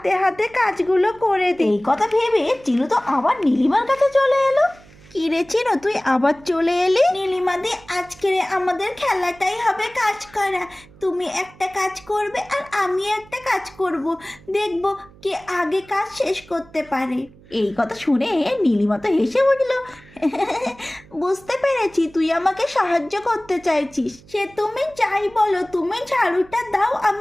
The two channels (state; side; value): noise; right; hum, 24 dB below the sound